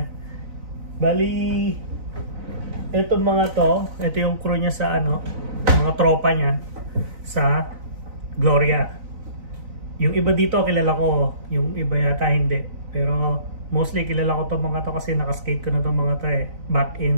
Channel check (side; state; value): left; late; 4.0 ms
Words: Bali ito ito yung crew niya sa mga tropa niya sa Gloria. Yung iba dito kilala ko, yung iba yata hindi. Pero mostly kilala ko mga to kasi nakaskate ko na itong mga to back